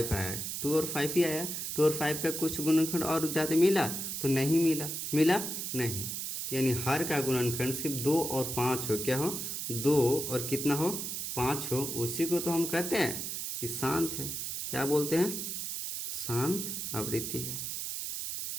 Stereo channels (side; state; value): right; noise; hiss, 4 dB below the sound